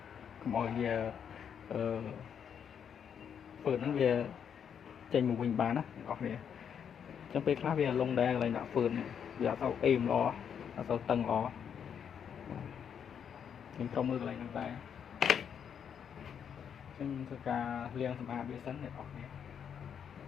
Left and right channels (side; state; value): right; quieter; 7.9 dB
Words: កុំឲ្យវាហ្វឺតហ្នឹងវាចេញមកវិញបានណាអរគ្នាអញ្ចឹងពេលខ្លះវាលងដែរកន្លែងដាក់ហ្វឺតវាអត់ទៅអេមល្អអត់ទៅតឹងល្អខ្ញុំត្រូវមើលកន្លែងហ្នឹងដែរអញ្ចឹងធ្វើការលាងសម្អាតវាសិនអ្នកនរគ្នា